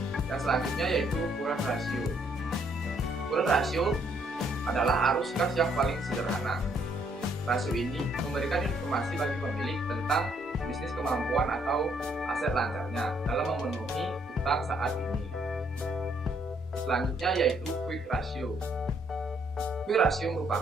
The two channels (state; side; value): normal; both; correlation 0.69